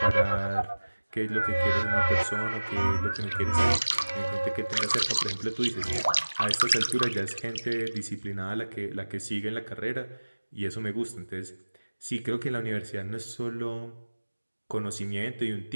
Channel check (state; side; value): inverted; both; correlation -1.00